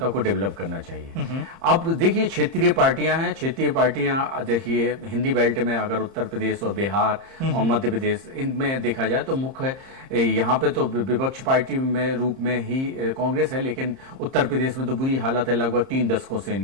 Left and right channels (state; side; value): late; left; 30 ms